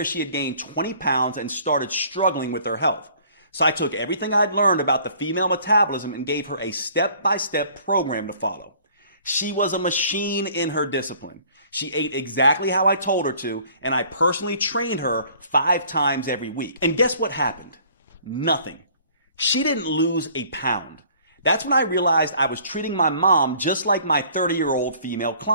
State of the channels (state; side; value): inverted; both; correlation -0.55